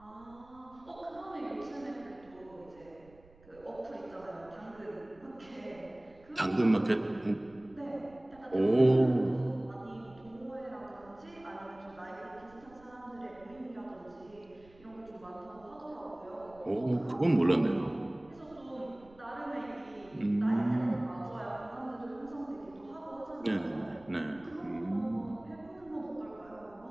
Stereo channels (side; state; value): right; noise; rumble, 25 dB below the sound